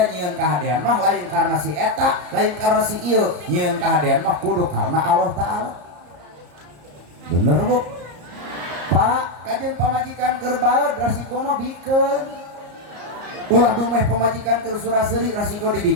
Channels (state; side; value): late; left; 34 ms